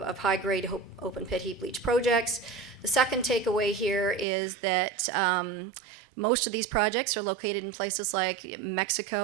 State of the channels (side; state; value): left; drops out; at 4.2 s